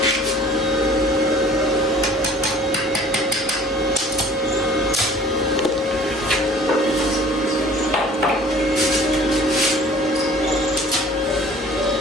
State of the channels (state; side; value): normal; both; correlation 0.49